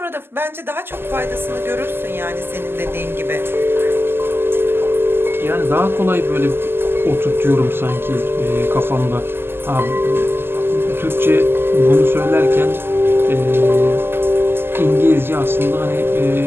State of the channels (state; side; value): late; left; 0.11 ms